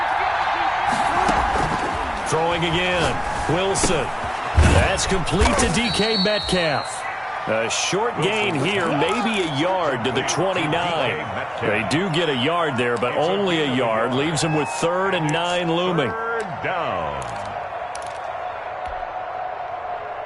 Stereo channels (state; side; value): identical; both; correlation 1.00